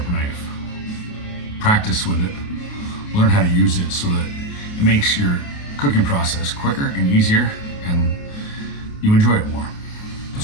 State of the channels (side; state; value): right; late; 28 ms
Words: knife. Practice with it. Learn how to use it so that it makes your cooking process quicker and easier, and you enjoy it more.